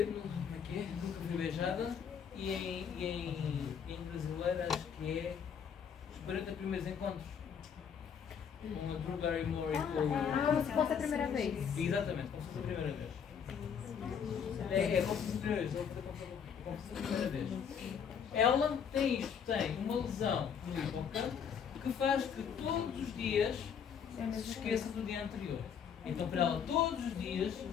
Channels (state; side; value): quieter; right; 7.4 dB